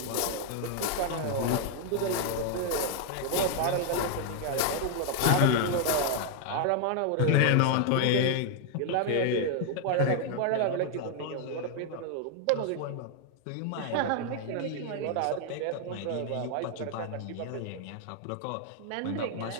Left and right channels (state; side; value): different; both; correlation 0.00